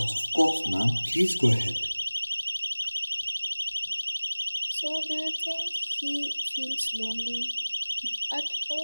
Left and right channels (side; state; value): both; inverted; correlation -1.00